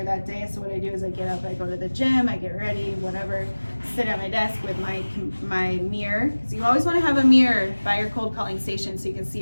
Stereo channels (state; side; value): inverted; both; correlation -1.00